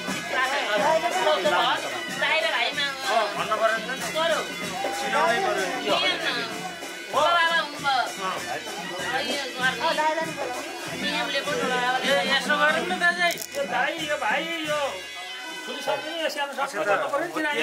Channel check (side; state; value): both; identical; correlation 1.00